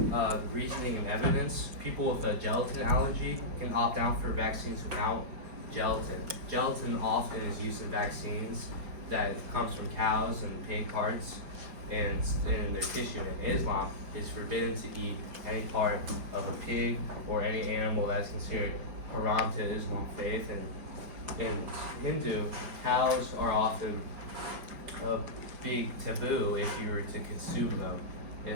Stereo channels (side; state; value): left; late; 5.1 ms